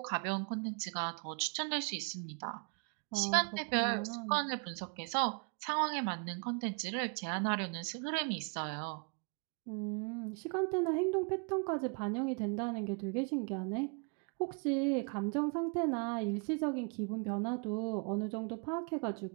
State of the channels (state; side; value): quieter; left; 36.4 dB